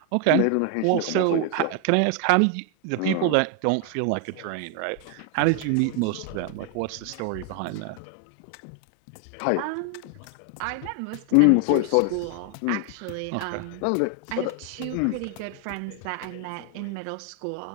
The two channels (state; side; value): different; both; correlation 0.01